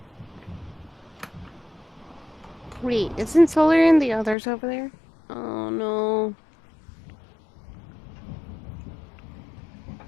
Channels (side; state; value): right; drops out; at 4.4 s